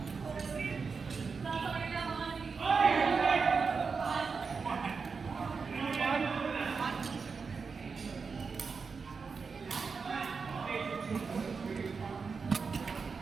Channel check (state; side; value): quieter; left; 5.1 dB